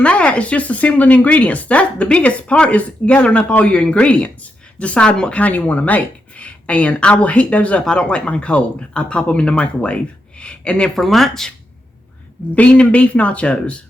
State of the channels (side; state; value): both; normal; correlation 0.84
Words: that. It's just assembling ingredients. That's the biggest part, is gathering up all your ingredients, deciding what kind you want to make. And I will heat those up. I don't like mine cold. I pop them in the microwave. And then for lunch, bean and beef nachos.